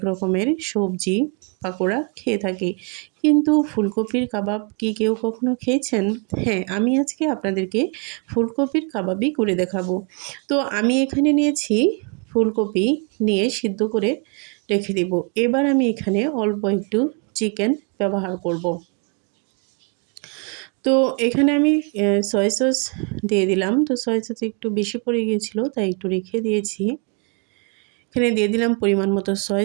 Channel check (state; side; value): quieter; left; 35.6 dB